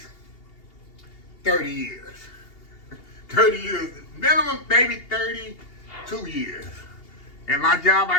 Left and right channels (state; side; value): late; right; 2.8 ms